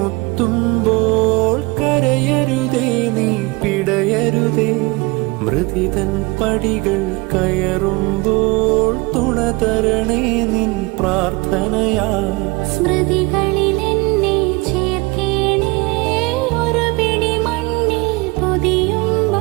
കരയരുതേ, നീ പിടയരുതേ. മൃതിതൻ പടികൾ കയറുമ്പോൾ തുണതരണേ നിൻ പ്രാർത്ഥനയാ. സ്മൃതികളിൽ എന്നെ ചേർക്കേണേ, ഒരു പിടി മണ്ണിൽ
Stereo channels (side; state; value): left; quieter; 25.0 dB